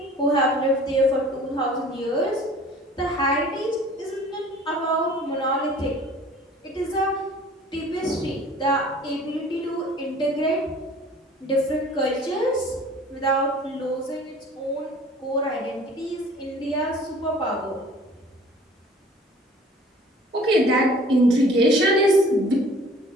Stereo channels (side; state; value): both; normal; correlation 0.49